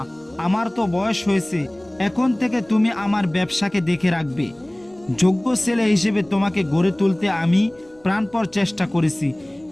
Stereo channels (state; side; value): noise; right; rumble, 30 dB below the sound